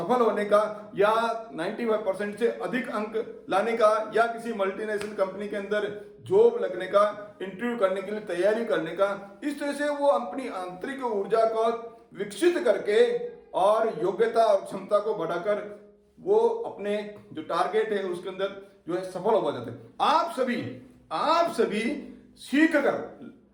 होने का, या 95% से अधिक अंक लाने का, या किसी मल्टीनेशनल कंपनी के अंदर जॉब लगने का, इंटरव्यू करने के लिए तैयारी करने का, इस तरह से वो अपनी आंतरिक ऊर्जा को विकसित करके और योग्यता और क्षमता को बढ़ाकर वो अपने जो टारगेट है उसके अंदर जो है सफल हो जाते हैं। आप सभी सीख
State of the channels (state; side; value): identical; both; correlation 1.00